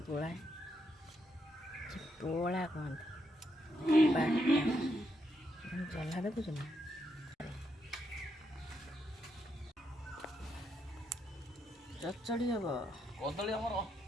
পোড়াই পোড়া কোন বাটা জলা দেখুছ না চচ্চড়ি হব କଦଳୀ ଆମର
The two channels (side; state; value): both; normal; correlation 0.80